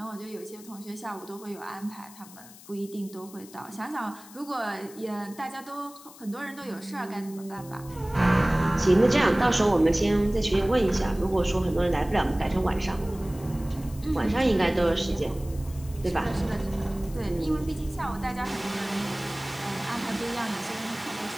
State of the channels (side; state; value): left; noise; hiss, 20 dB below the sound